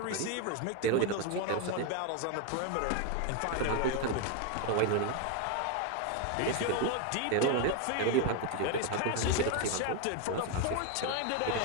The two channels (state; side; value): different; both; correlation 0.01